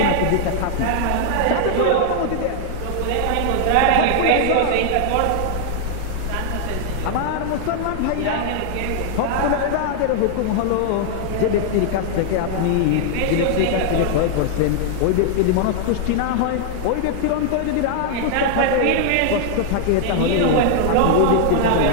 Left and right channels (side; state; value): both; different; correlation -0.01